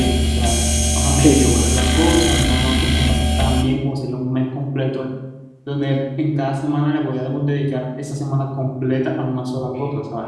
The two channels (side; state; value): both; identical; correlation 1.00